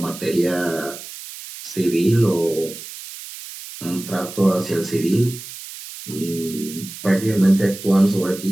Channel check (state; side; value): noise; right; hiss, 13 dB below the sound